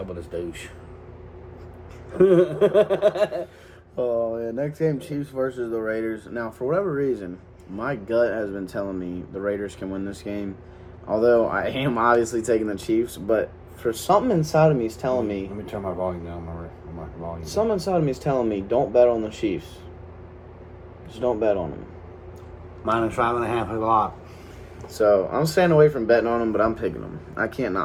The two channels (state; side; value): identical; both; correlation 1.00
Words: with this douche. Oh, yeah. Next game, Chiefs versus the Raiders. Now, for whatever reason, my gut has been telling me the Raiders can win this game. Although I am obviously taking the Chiefs, but for something inside of me is telling me. Let me turn my volume down. My volume. Something inside of me is telling me don't bet on the Chiefs. Just don't bet on them. -5.5 is a lot. So I'm staying away from betting on them, but I'm picking them. I can't